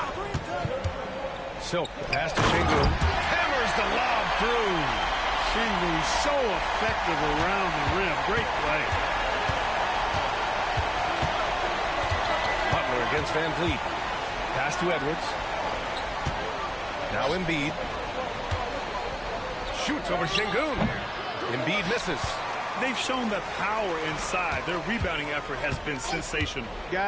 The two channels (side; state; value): both; identical; correlation 1.00